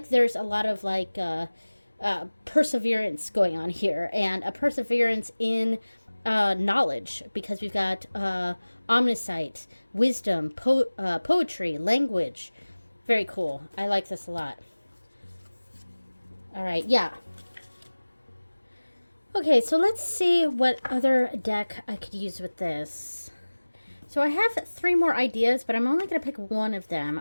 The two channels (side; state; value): both; inverted; correlation -1.00